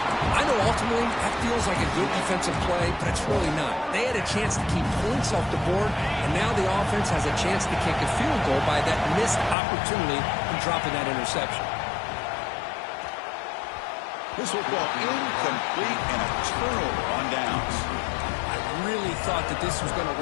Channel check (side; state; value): right; drops out; at 9.6 s